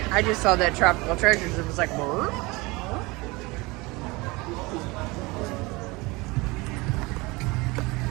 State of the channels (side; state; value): left; quieter; 23.9 dB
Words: I just saw that Tropical Treasures and was like, what?